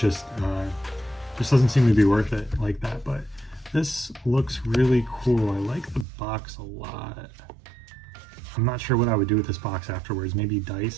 doesn't seem to be worth it like that. But this looks really cool. I like the box a lot. I'm not sure what I would do with this box afterwards, maybe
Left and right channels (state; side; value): drops out; left; at 6.1 s